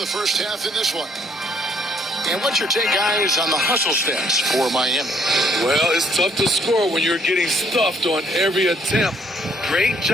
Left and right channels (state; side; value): normal; both; correlation 0.66